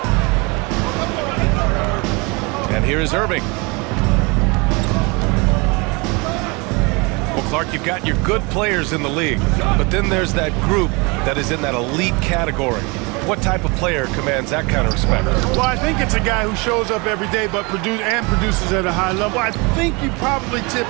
And here is Irving. Well, Clark, you've got your good players in the league, but then there's that group that is in that elite category. What type of player commands that kind of respect? Well, I think it's a guy who shows up every day but produces at a high level. I think you probably tip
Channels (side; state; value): left; quieter; 28.2 dB